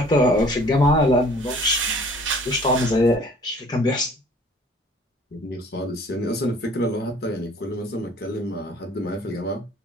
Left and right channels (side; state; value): both; normal; correlation 0.53